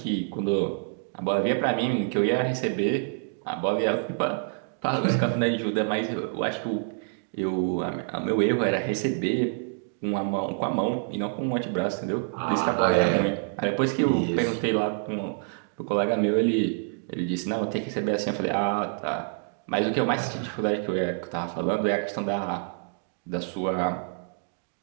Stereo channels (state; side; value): silent; left; 60 dB below the other